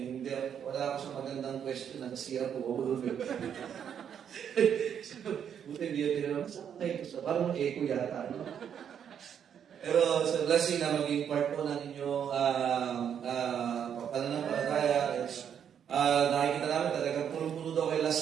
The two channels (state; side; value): quieter; left; 8.5 dB